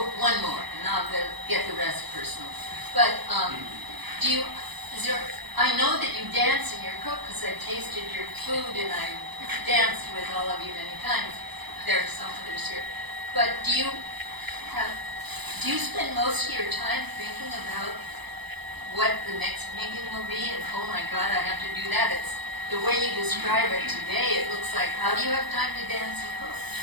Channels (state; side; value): late; left; 0.99 ms